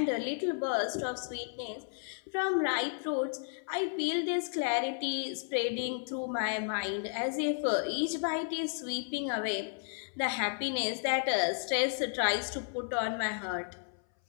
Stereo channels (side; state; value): right; silent; 56 dB below the other